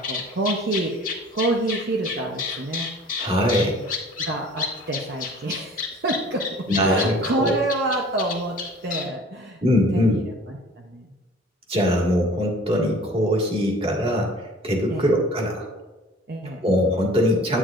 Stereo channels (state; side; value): normal; both; correlation 0.48